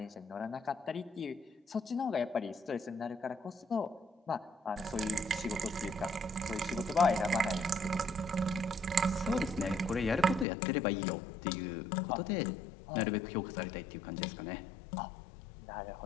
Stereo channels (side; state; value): right; drops out; at 10.5 s